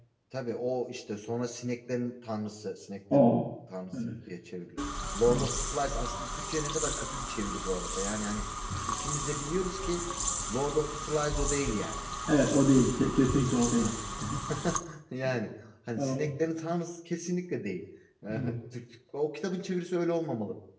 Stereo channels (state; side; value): identical; both; correlation 1.00